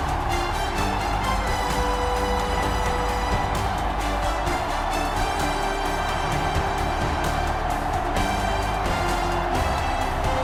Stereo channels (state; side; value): identical; both; correlation 1.00